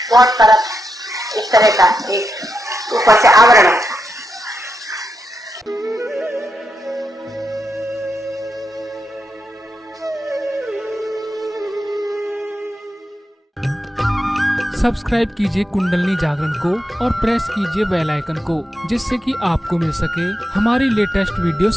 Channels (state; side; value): normal; both; correlation 0.86